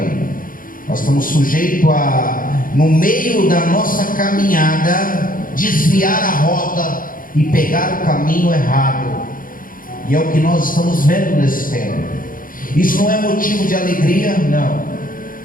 nós estamos sujeitos a, no meio da nossa caminhada, desviar a rota e pegar o caminho errado. E é o que nós estamos vendo nesse tempo. Isso não é motivo de alegria, não.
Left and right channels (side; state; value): right; late; 0.40 ms